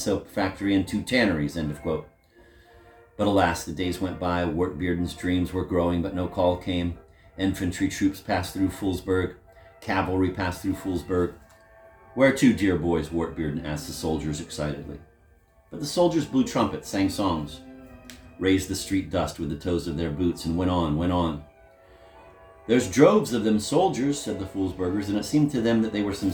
factory and 2 tanneries, end of quote. But alas, the days went by, Wartbearden's dreams were growing, but no call came. Infantry troops passed through Foolsburg, cavalry passed through Foolsburg. Where to, dear boys? Wartbearden asked the soldiers excitedly. But the soldiers blew trumpets, sang songs, raised the street dust with the toes of their boots, and went on, went on. "There's droves of them soldiers," said the Foolsburgers, and it seemed to them that they were some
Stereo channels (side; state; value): both; identical; correlation 1.00